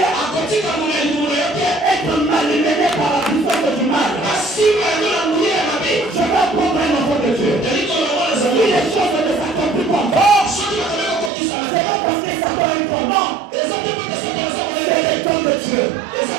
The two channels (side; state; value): left; drops out; at 11.3 s